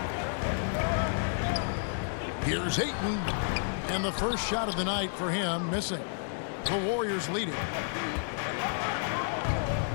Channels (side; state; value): right; silent; digital silence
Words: Here's Hayton. And the first shot of the night for him missing. The Warriors lead it.